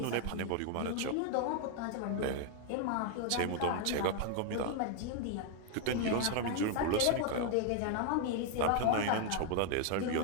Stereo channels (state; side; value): different; both; correlation 0.00